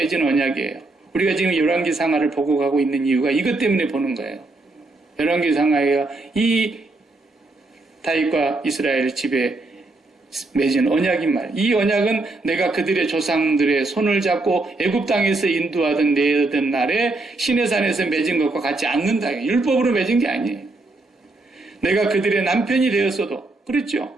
언약이에요. 우리가 지금 열왕기 상하를 보고 가고 있는 이유가 이것 때문에 보는 거예요. 열왕기 상하가 이 다윗과 이스라엘 집에 맺은 언약인 말. 이 언약은 내가 그들의 조상들의 손을 잡고 애굽 땅에서 인도하던 내던 날에 시내산에서 맺은 것과 같지 않는다. 율법으로 맺은 게 아니에요. 내가 그들의 남편이 되었어도 그렇죠.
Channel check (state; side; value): quieter; left; 3.1 dB